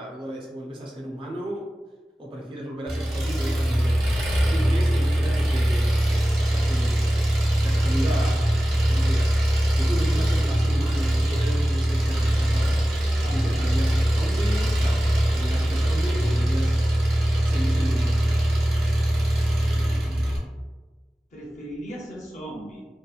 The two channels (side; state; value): both; normal; correlation 0.96